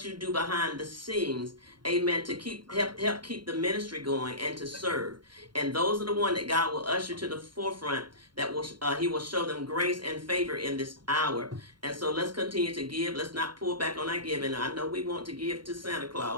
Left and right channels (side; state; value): left; late; 0.72 ms